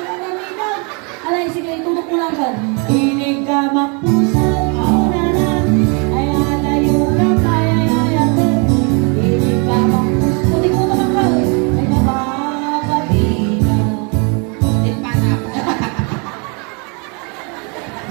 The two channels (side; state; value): left; quieter; 34.2 dB